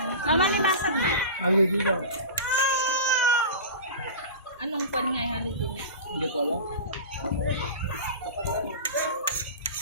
Mama, nilasag na. Ano dito? Anong pan nga yung holiday niya? Hindi ko alam.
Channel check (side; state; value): both; inverted; correlation -0.31